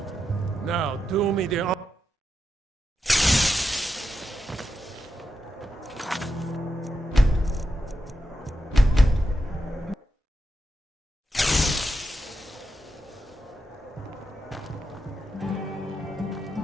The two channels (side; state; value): both; normal; correlation 0.87